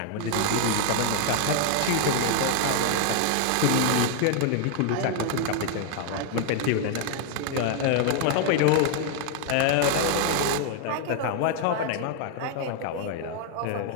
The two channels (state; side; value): different; both; correlation 0.00